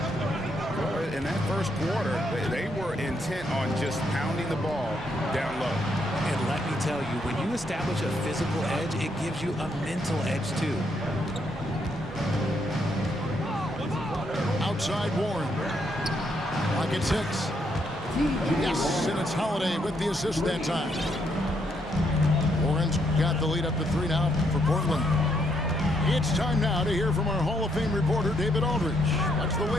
In that first quarter, they were intent on just pounding the ball down low. And let me tell you, when you establish a physical edge, it gives you a mental edge too. Outside Warren. Lock at 6. Yes, and it's Holiday with the assist that time. Warren's got the lead up to 3 now for Portland. It's time now to hear from our Hall of Fame reporter, David Aldridge. What's the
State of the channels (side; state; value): both; normal; correlation 0.75